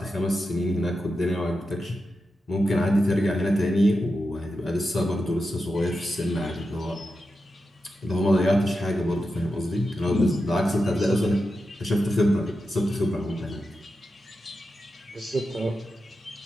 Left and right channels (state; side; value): normal; both; correlation 0.89